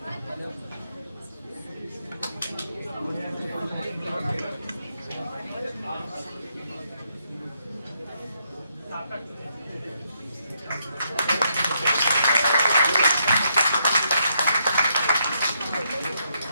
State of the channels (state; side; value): inverted; both; correlation -0.77